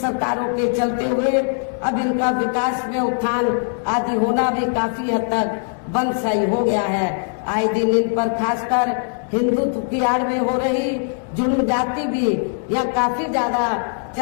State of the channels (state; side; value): silent; right; 63 dB below the other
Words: के चलते हुए अब इनका विकास में उत्थान आदि होना भी काफी हद तक बंद सही हो गया है। आए दिन इन पर खासकर हिंदुत्व की आड़ में हो रही जुल्म जाति भी यह काफी ज्यादा